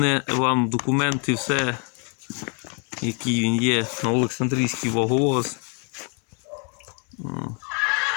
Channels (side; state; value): right; quieter; 37.8 dB